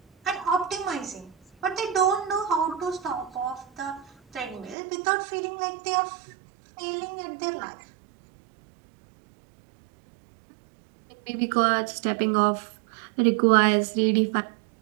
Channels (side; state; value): left; drops out; at 4.8 s